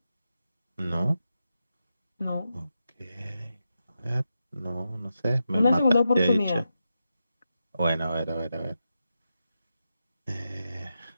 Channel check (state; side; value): inverted; both; correlation -0.88